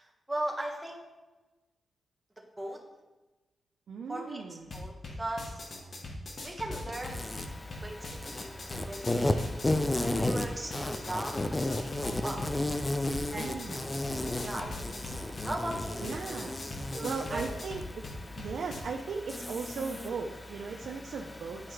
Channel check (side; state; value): both; normal; correlation 0.92